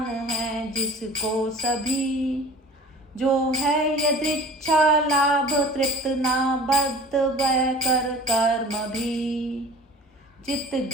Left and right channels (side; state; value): both; normal; correlation 0.43